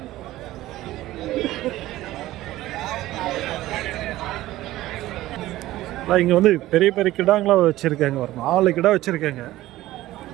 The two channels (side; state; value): left; quieter; 16.0 dB